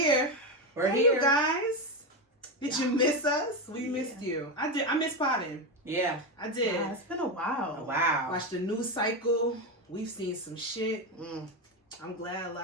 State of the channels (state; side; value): normal; both; correlation 0.13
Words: We're Hey, here. you guys. Did you miss us? We Yeah. missed you. I did. I missed potting. Yeah. I did. Yeah, it's been a while. Oh, wow. Watched the news cycle. We've seen some shit. Mm. I'm glad a